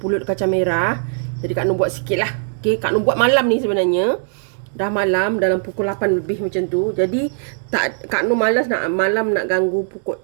kacang merah. Jadi Kak Nur buat sikit lah. Okey, Kak Nur buat malam ni sebenarnya. Dah malam, dalam pukul 8 lebih macam tu. Jadi Kak Nur malas nak malam nak ganggu pukul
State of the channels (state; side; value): silent; left; digital silence